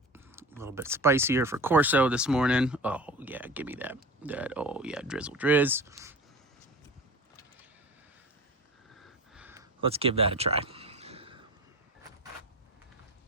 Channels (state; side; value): normal; both; correlation 0.34